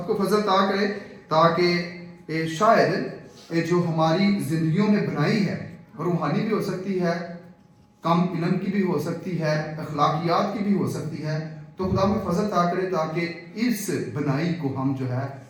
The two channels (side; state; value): both; identical; correlation 1.00